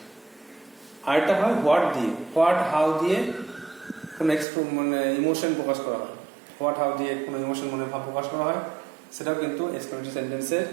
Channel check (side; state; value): left; drops out; at 4.5 s